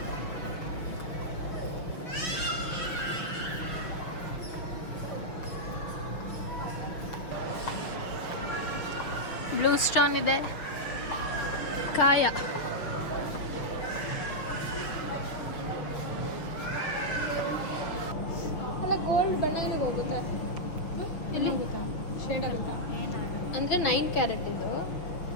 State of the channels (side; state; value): right; late; 6.3 ms